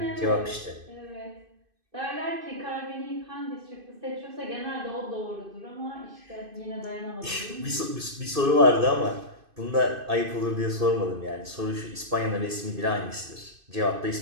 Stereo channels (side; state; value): left; late; 2.5 ms